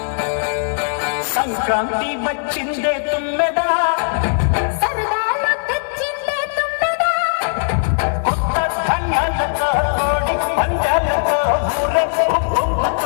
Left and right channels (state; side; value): silent; right; digital silence